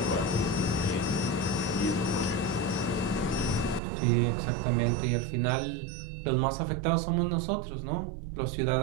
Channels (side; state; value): left; drops out; at 3.8 s